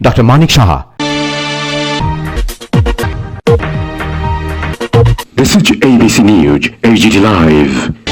doctor Manik Saha. This is ABC News, HGT Live.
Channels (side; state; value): both; identical; correlation 1.00